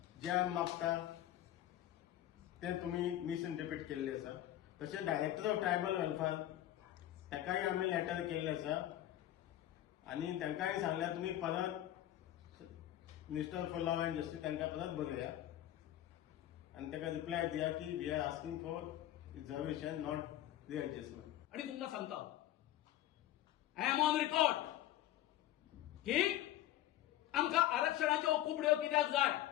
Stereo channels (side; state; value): right; quieter; 13.4 dB